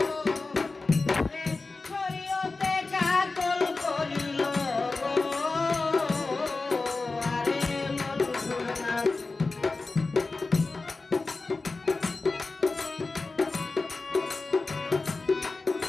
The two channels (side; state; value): right; quieter; 3.7 dB